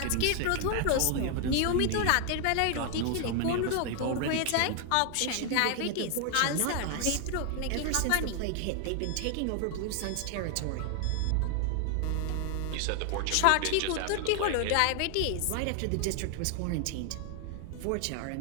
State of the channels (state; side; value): different; both; correlation 0.00